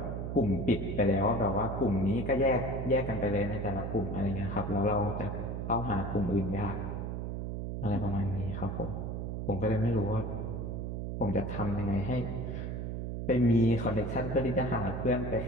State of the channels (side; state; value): right; noise; hum, 4 dB below the sound